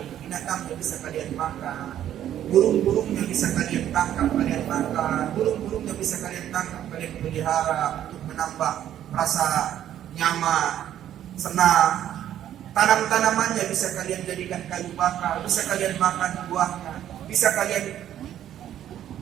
binatangnya bisa kalian makan. Burung-burungnya bisa kalian tangkap, kalian makan. Burung-burungnya bisa kalian tangkap, kalian pelihara untuk menambah rasa nyaman, senang. Tanam-tanamannya bisa kalian jadikan kayu bakar, bisa kalian makan buahnya, bisa kalian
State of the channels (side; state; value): left; quieter; 11.2 dB